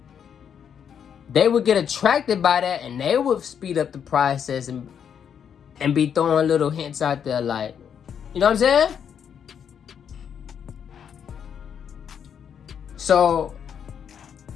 They would get attracted by that and they would speed up the process and be throwing little hints out there like, you know what I'm saying? So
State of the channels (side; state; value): right; quieter; 8.0 dB